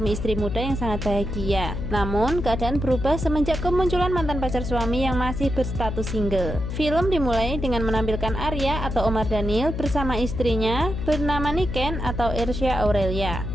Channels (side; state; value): left; noise; hum, 4 dB below the sound